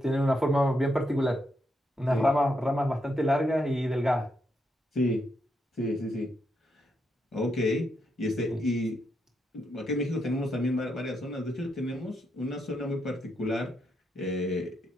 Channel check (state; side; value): normal; both; correlation 0.80